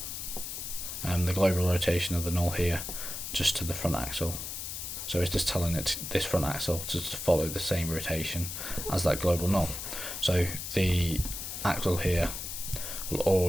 the global rotation of the null here, just to the front axle. So it's just telling it, this front axle, to follow the same rotation as that global null. So the axle here will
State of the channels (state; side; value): noise; left; hiss, 6 dB below the sound